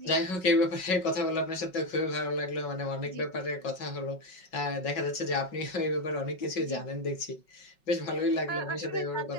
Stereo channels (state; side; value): late; right; 5.4 ms